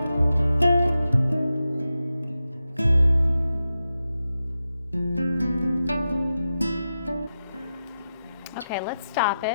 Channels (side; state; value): both; inverted; correlation -0.91